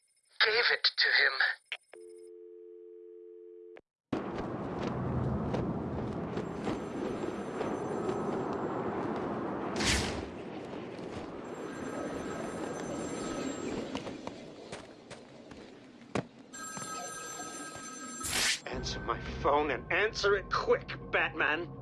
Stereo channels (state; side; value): identical; both; correlation 1.00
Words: gave it to him. Answer my phone and answer it quick, Batman.